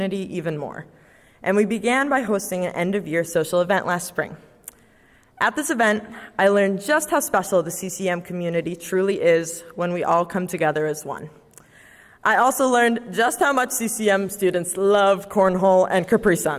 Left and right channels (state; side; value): identical; both; correlation 1.00